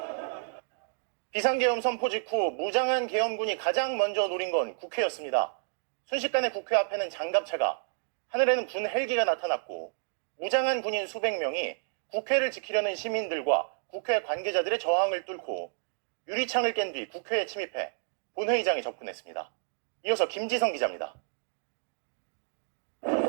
비상계엄 선포 직후 무장한 계엄군이 가장 먼저 노린 건 국회였습니다. 순식간에 국회 앞에는 장갑차가, 하늘에는 군 헬기가 나타났고 무장한 군인 수백 명이 국회를 지키려는 시민들과 국회 관계자들의 저항을 뚫고 유리창을 깬 뒤 국회에 침입해 본회의장에 접근했습니다. 이어서 김지성 기자입니다.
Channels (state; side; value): silent; left; digital silence